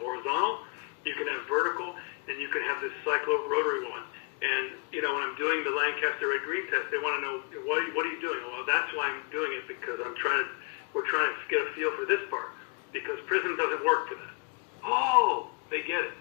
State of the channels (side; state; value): right; quieter; 33.5 dB